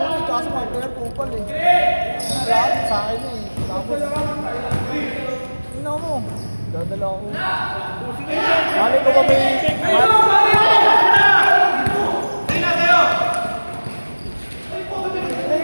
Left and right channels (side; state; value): both; inverted; correlation -1.00